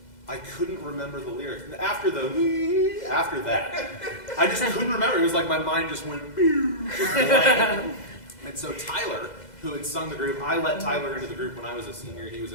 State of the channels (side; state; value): right; late; 2.0 ms